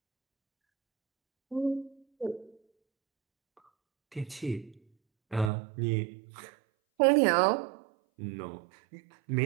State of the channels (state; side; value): drops out; left; at 5.5 s